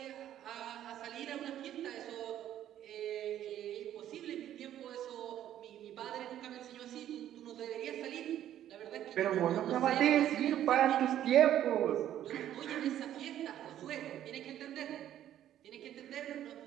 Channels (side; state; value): left; quieter; 11.6 dB